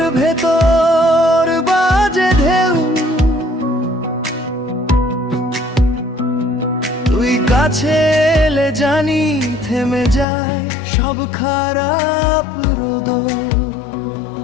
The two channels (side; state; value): right; drops out; at 10.2 s